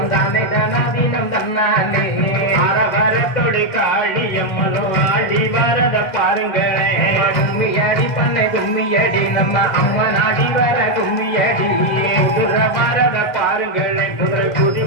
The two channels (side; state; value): right; late; 2.0 ms